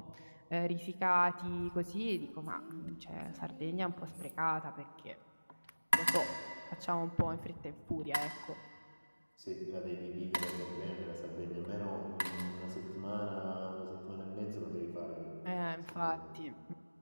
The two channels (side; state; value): both; inverted; correlation -1.00